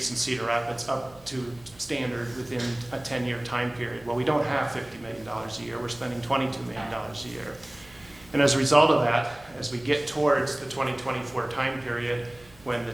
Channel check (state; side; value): noise; right; hum, 25 dB below the sound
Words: in Cedar Rapids up to standard within a 10-year time period. Well, we don't have $50 million a year. We're spending $22 million a year. And as a result of that, as we get towards the 2024 time period, when the